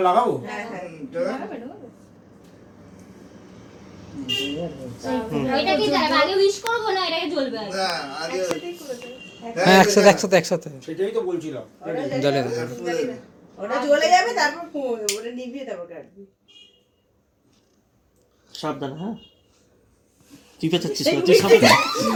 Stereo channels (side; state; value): both; identical; correlation 1.00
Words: লাগাবো? হ্যাঁ হ্যাঁ ওইটা কি যাবে আগে উইশ করবো না এটাকে জ্বলবে আগে না, আগে হ্যাঁ একসাথে সেটাই তো বলছিলাম। জ্বলে ওটা জ্বলে যাবে তারপর ওটা নিভিয়ে তারপর কাটবি সাবধান হ্যাঁ। তুই পেঁচাচ্ছিস না, তুই সাবধান।